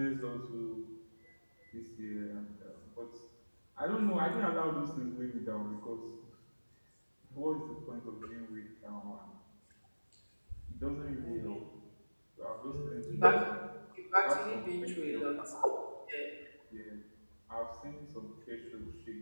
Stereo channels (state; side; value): inverted; both; correlation -1.00